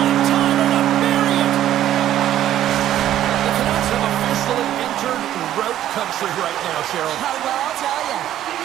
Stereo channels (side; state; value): left; quieter; 12.1 dB